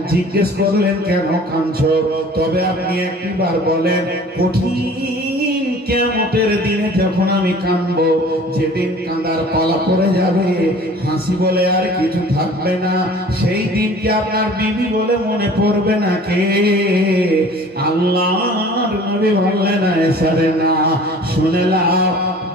জিজ্ঞেস করলেন কেন কাঁদছো তবে আপনি একবার বলেন কঠিন কিয়ামতের দিনে যখন আমি কাঁদবো যেদিন কাঁদার পালা পড়ে যাবে হাসি বলে আর কিছু থাকবে না সেই দিন কি আপনার বিবি বলে মনে পড়বে না কে আল্লাহর নবী বললেন আয়েশা রে না শুনে লাও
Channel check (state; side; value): normal; both; correlation 0.47